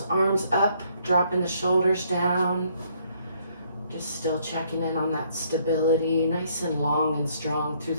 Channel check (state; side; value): inverted; both; correlation -0.67